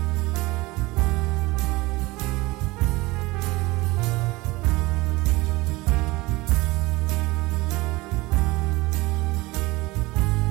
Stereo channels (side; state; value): left; quieter; 21.4 dB